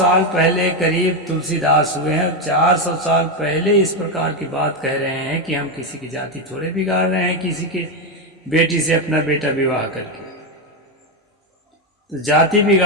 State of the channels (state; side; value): normal; both; correlation 0.08